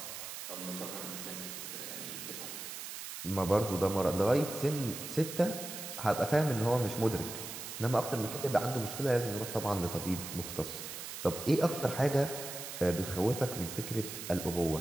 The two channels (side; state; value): right; noise; hiss, 8 dB below the sound